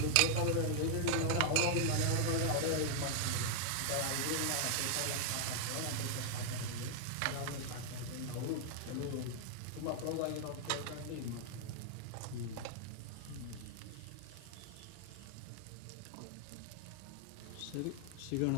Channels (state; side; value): different; both; correlation 0.00